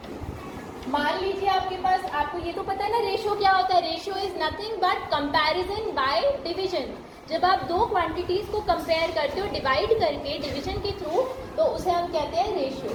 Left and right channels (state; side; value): identical; both; correlation 1.00